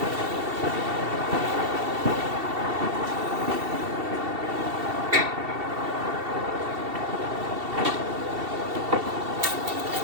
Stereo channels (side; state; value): left; late; 2.7 ms